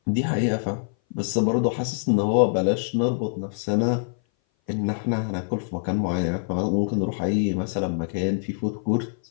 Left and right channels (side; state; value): right; silent; 58 dB below the other